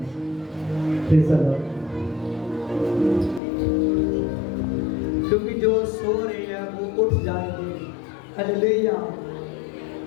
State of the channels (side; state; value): right; drops out; at 3.4 s